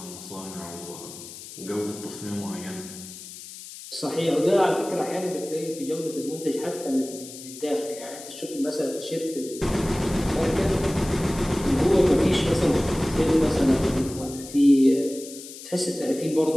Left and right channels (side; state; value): left; noise; hiss, 14 dB below the sound